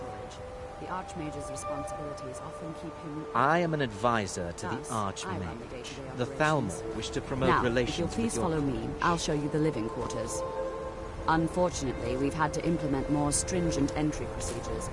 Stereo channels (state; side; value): identical; both; correlation 1.00